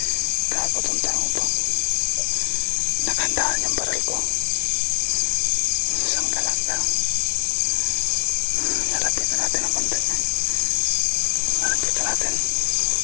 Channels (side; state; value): right; silent; 64 dB below the other